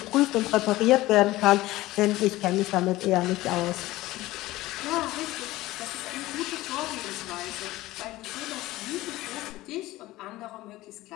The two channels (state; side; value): quieter; right; 17.6 dB